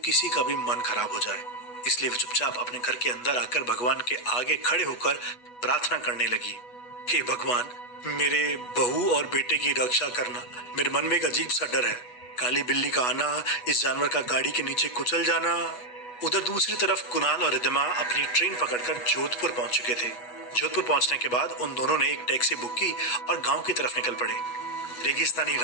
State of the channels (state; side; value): late; right; 8.2 ms